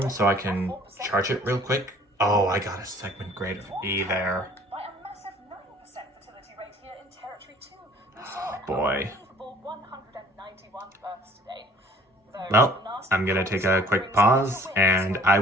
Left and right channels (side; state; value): both; normal; correlation 0.54